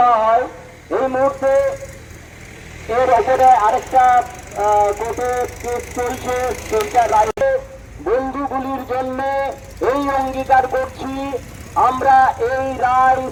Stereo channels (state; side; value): identical; both; correlation 1.00